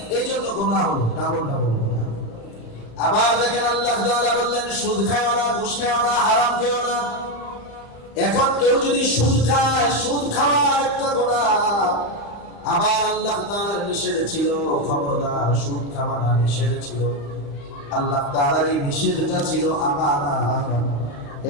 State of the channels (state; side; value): late; right; 35 ms